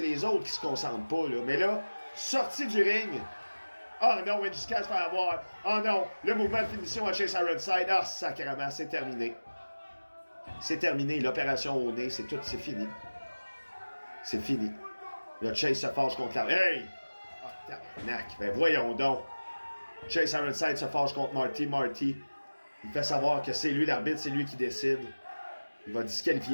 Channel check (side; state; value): both; inverted; correlation -1.00